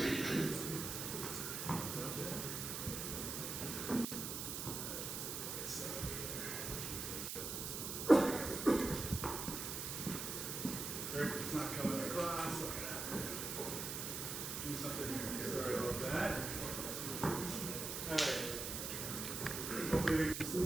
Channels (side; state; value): right; noise; hiss, 4 dB below the sound